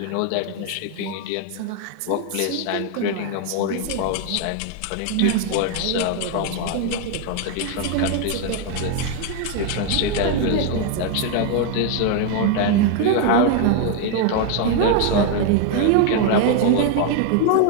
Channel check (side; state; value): both; different; correlation 0.00